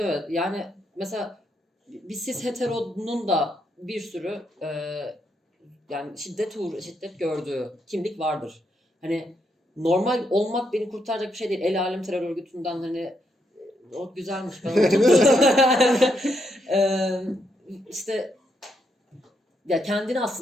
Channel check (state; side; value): normal; both; correlation 0.78